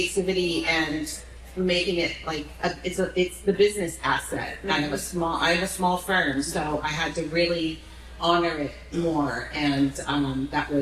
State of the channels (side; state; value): both; identical; correlation 1.00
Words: and making it like it's the business asset. I have a small firm, so I had to really honor it more, and that